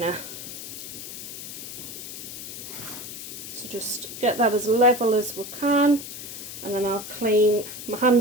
So just get that as level as we can, and then I'll clean, my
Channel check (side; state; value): left; noise; hiss, 10 dB below the sound